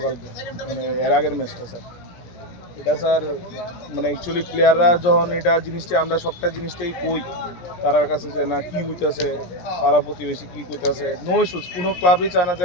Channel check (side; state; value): right; late; 17 ms